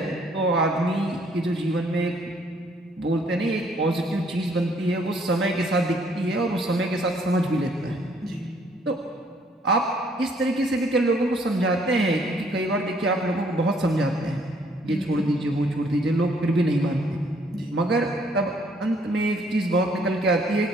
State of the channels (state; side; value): normal; both; correlation 0.65